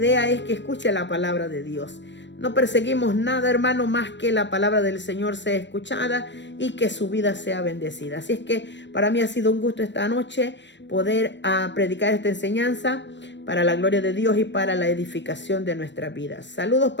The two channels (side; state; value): right; late; 0.53 ms